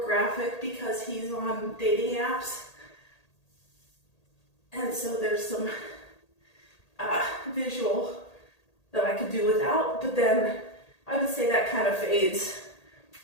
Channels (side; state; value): right; late; 1.8 ms